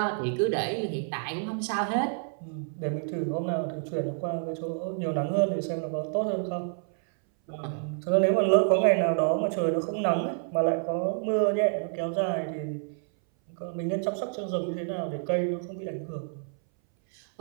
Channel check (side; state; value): left; silent; 59 dB below the other